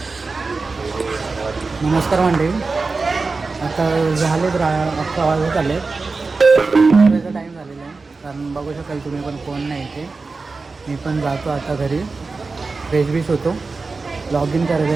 नमस्कार मंडळी. आता झालेत 11 वाजत आले. टाईम झालेला आहे. कारण बघू शकाल तुम्ही पण कोण नाही इथे. मी पण जातो आता घरी. फ्रेश बीश होतो. लॉग इन करायचं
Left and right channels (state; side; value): quieter; left; 4.0 dB